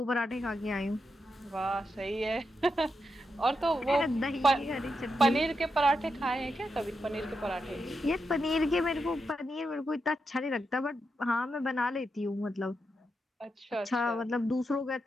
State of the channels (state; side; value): normal; both; correlation 0.85